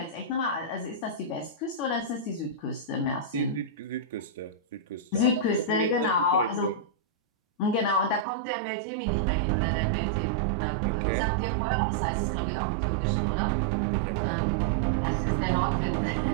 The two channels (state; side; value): drops out; left; at 8.2 s